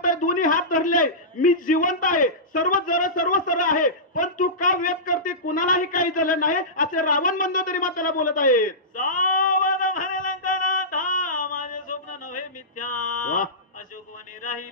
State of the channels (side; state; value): both; normal; correlation -0.18